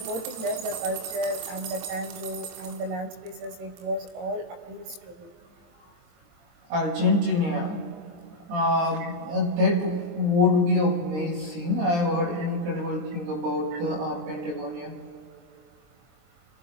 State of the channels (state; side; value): late; left; 23 ms